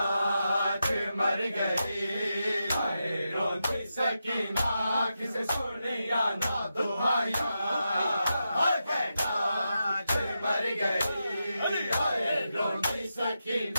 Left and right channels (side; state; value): both; inverted; correlation -0.88